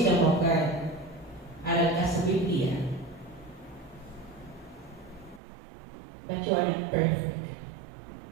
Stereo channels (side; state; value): left; drops out; at 5.4 s